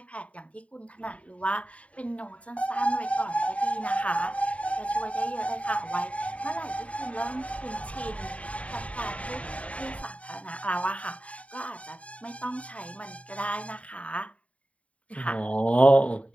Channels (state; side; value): late; right; 0.065 ms